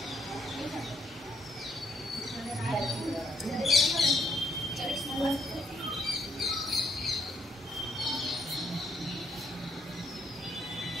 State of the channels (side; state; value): both; normal; correlation 0.71